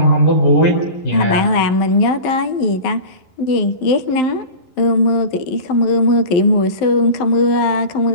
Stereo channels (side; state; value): right; late; 11 ms